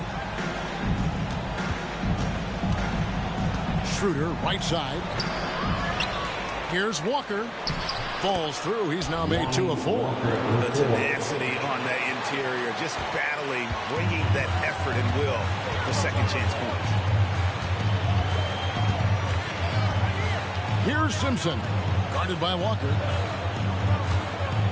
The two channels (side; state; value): both; identical; correlation 1.00